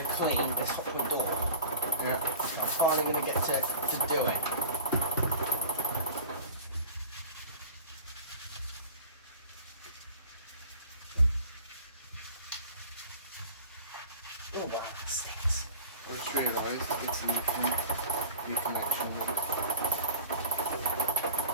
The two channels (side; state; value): both; inverted; correlation -0.39